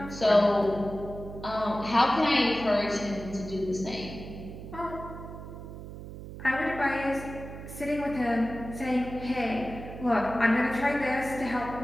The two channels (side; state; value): right; noise; hum, 12 dB below the sound